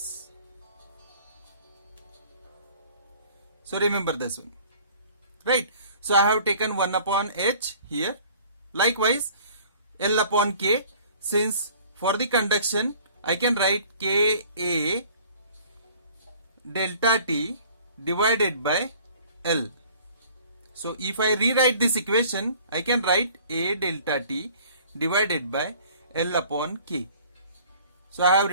So remember this one, right? So I have taken 1 upon H here. Likewise L upon K, since for the conduction I can write Ka delta T divided by L. So if I rewrite this equation, I can write A delta T divided by L upon K. So I have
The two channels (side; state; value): both; inverted; correlation -0.51